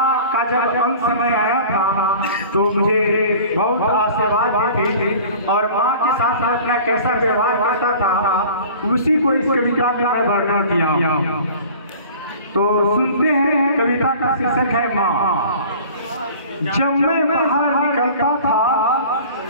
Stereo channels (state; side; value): inverted; both; correlation -0.44